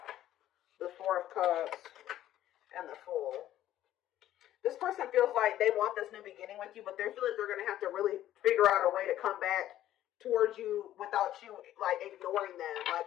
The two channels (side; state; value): right; quieter; 12.8 dB